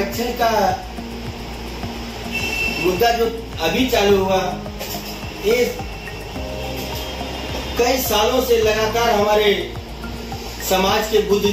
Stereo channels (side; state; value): both; identical; correlation 1.00